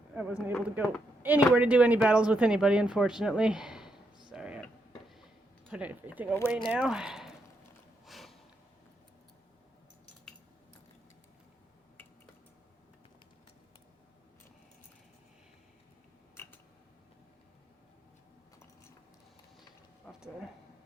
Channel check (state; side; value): normal; both; correlation 0.80